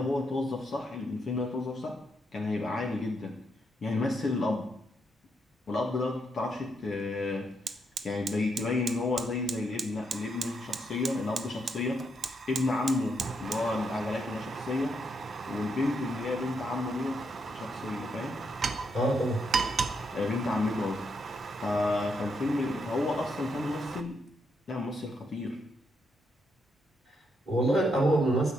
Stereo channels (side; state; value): both; normal; correlation 0.79